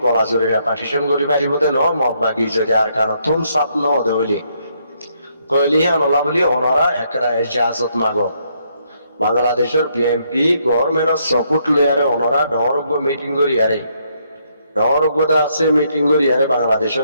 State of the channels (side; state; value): both; inverted; correlation -0.73